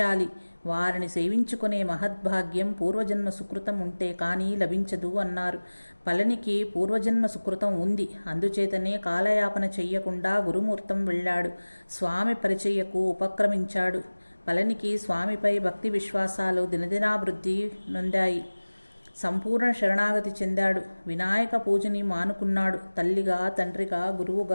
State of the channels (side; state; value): both; inverted; correlation -1.00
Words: వారిని సేవించుకునే మహద్భాగ్యం పూర్వజన్మ సుకృతం ఉంటే కానీ లభించదు అన్నారు. పళనికి పూర్వజన్మ సుకృతం ఉంది. అందుచేతనే కాలయాపన చెయ్యకుండా గురుమూర్తం వెళ్ళాడు. స్వామి పరిచయకు ఉపక్రమించాడు. పళనికి స్వామిపై భక్తి విశ్వాసాలు దినదినాభివృద్ధి నొందాయి. సంపూర్ణ శరణాగతి చెందాడు. వినాయక పూజని మానుకున్నాడు. తల్లిగా, తండ్రిగా,